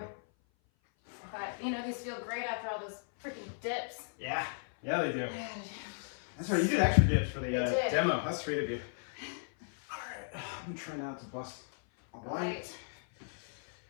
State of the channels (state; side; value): silent; right; 54 dB below the other